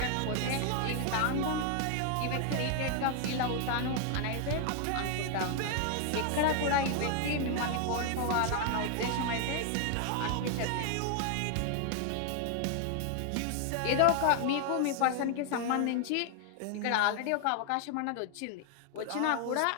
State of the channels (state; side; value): different; both; correlation 0.00